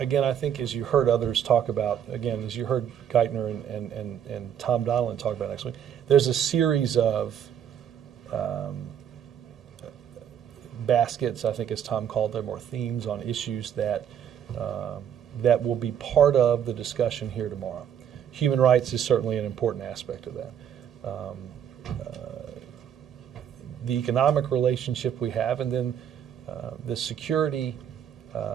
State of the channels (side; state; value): left; quieter; 9.1 dB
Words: I think as you heard others talk about, again, as you heard Geithner and Tom Donilon talk about next week, there's a series of baskets, I think as Tom called them, or themes on issues that that will be part of the discussion here tomorrow. Human rights is certainly an important aspect of that. The economic relationship we have, and then the security